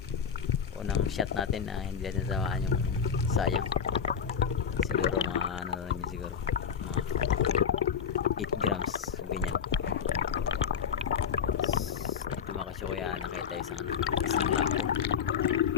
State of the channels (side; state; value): right; quieter; 7.2 dB